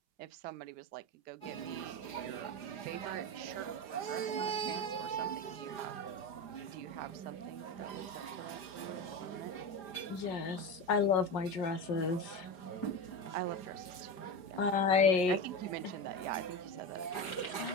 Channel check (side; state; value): right; late; 5.0 ms